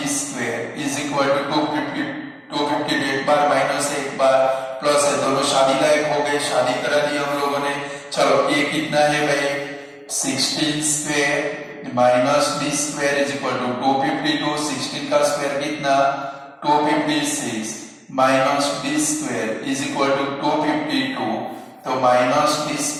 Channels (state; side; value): identical; both; correlation 1.00